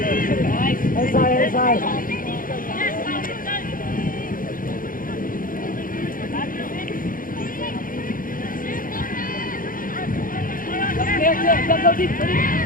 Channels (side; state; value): right; late; 0.40 ms